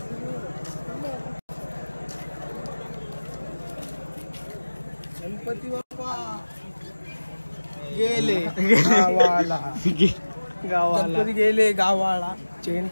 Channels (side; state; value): both; inverted; correlation -1.00